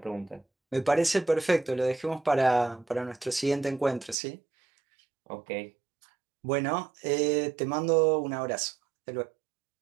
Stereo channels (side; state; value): left; drops out; at 4.2 s